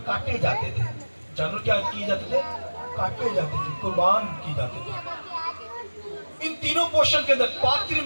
کاٹے جاتے تھے. جانور کیا کیے جاتے تھے؟ کاٹے جاتے تھے, قربان کی جاتے تھے. ان تینوں پورشن کے اندر پاک ترین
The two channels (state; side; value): inverted; both; correlation -1.00